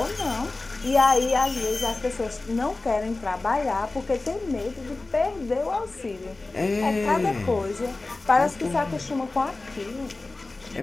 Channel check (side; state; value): right; quieter; 3.3 dB